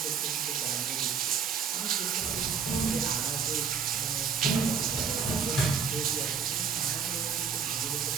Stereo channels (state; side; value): quieter; left; 6.4 dB